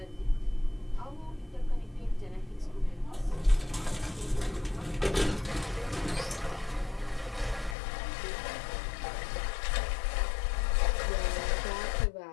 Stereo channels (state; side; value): drops out; right; at 7.8 s